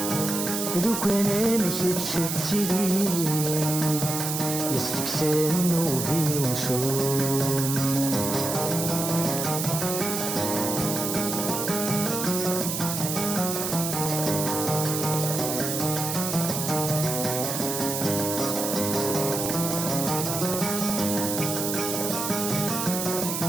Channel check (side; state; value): right; noise; hiss, 3 dB below the sound